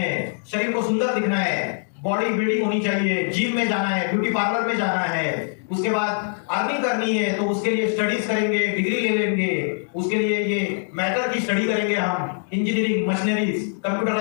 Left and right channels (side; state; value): right; silent; digital silence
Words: शरीर को सुंदर दिखना है, बॉडी बिल्डिंग होनी चाहिए, जिम में जाना है, ब्यूटी पार्लर में जाना है, उसके बाद अर्निंग करनी है तो उसके लिए स्टडीज करेंगे, डिग्री ले लेंगे, उसके लिए ये मैटर की स्टडी करेंगे हम, engineering, machineries,